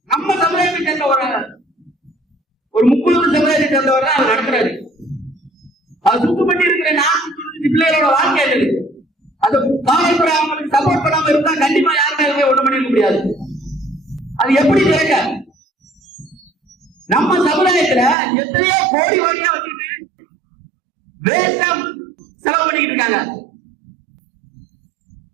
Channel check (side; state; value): left; drops out; at 18.2 s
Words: நம்ம சமுதாயத்தை சேர்ந்த ஒரு 30 சமுதாயத்தை சேர்ந்தவர் தான் நடத்துறாரு. அது சுத்தப்பட்டு இருக்கிற 495 பிள்ளைகளோட வாழ்க்கை இருக்கு. அது காவல்துறை அவங்களுக்கு சப்போர்ட் பண்ணாம இருந்தா கண்டிப்பா யாருமே ஒண்ணு பண்ணிக்க முடியாது. அது எப்படி திறக்க? நம்ம சமுதாயத்துல எத்தனையோ கோடி கோடியா வச்சுட்டு வேஸ்டா செலவு பண்ணிக்கிட்டு இருக்காங்க.